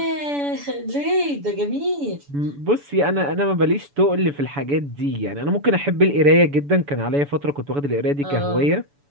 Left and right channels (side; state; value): left; late; 7.0 ms